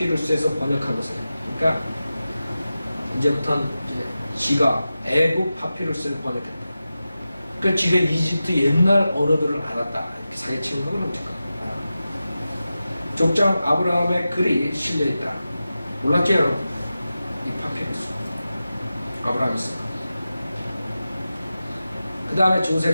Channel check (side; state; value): both; inverted; correlation -0.93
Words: 번역한 것이에요. 그러니까 이제부터는 지가 애국 파피루스를 번역했다. 그러니까 지가 이집트 옛날 언어들을 알았다. 이렇게 사기치는 건 어떨까? 족장 아브라함의 글이 실려있다. 몰랐죠 여러분? 이 파피루스 아브라함이 쓴 거. 그 다음에